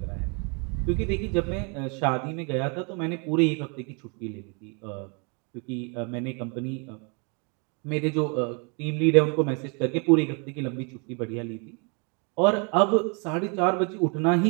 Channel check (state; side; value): quieter; left; 34.7 dB